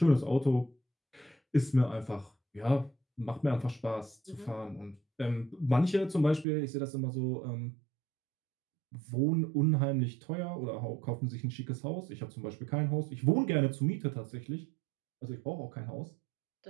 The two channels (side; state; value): left; drops out; at 6.5 s